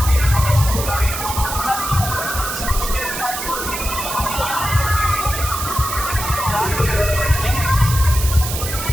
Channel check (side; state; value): right; noise; hiss, 5 dB below the sound